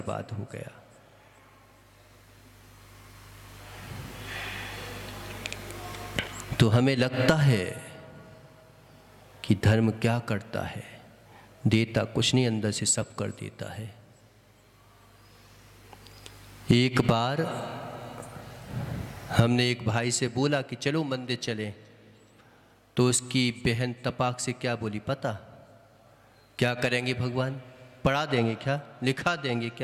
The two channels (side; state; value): both; identical; correlation 1.00